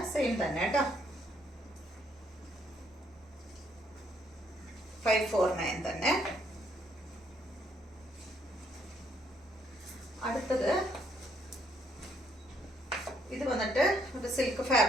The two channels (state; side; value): normal; both; correlation 0.70